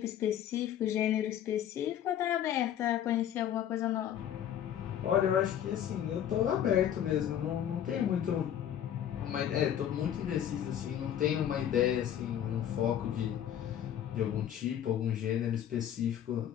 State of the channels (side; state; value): right; quieter; 10.3 dB